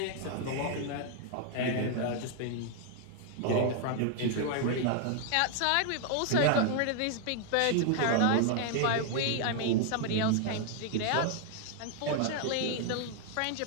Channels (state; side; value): different; both; correlation 0.00